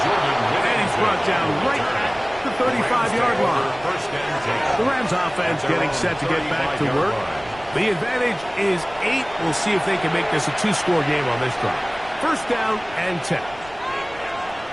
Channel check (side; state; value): right; noise; rumble, 21 dB below the sound